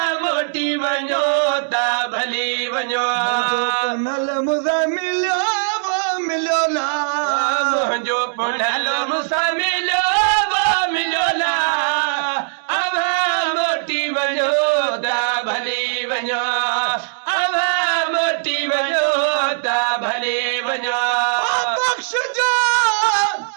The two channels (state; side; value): silent; left; digital silence